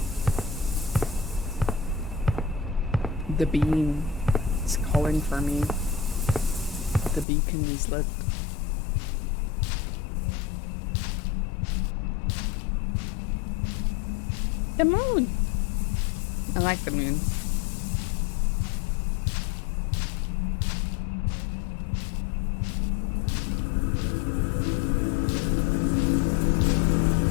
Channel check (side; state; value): right; drops out; at 7.2 s